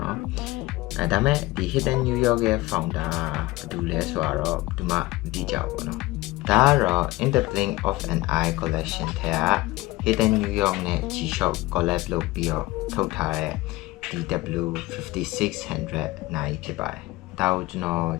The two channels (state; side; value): quieter; right; 19.8 dB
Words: ော်ဒါမဲ့ဒီ Hidden New York ရဲ့ founder ဘယ်သူလဲဆိုတော့ဒီမှာမသိကြဘူးပေါ့နော်ဒါကတော့ In the Blink of an Eye collection ထဲက Hidden New York နဲ့ G-Shock collab လုပ်ပြီးတော့ထုတ်ထားတဲ့ DW5600 နိုင်ဖြစ်ပါတယ်ဒါကိုကျွန်တော်